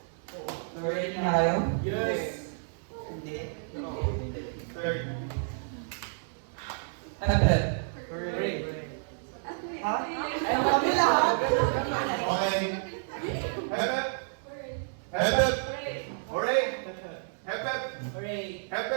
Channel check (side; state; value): left; silent; digital silence